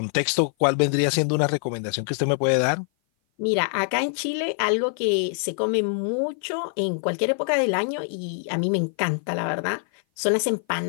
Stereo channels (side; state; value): right; silent; 56 dB below the other